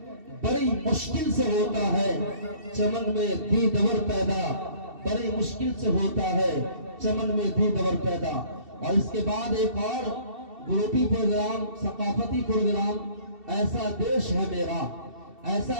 बड़ी मुश्किल से होता है चमन में दीदवर पैदा, बड़ी मुश्किल से होता है चमन में दीदवर पैदा। और इसके बाद एक और ग्रुपी प्रोग्राम, सकाफती प्रोग्राम, ऐसा देश है मेरा,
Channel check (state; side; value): late; left; 2.7 ms